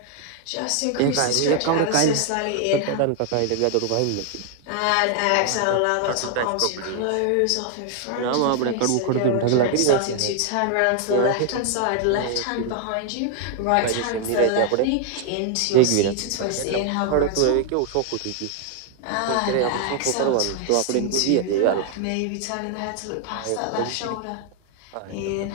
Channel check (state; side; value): different; both; correlation 0.00